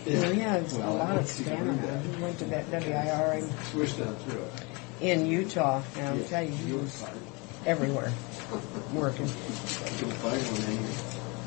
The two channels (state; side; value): quieter; right; 28.7 dB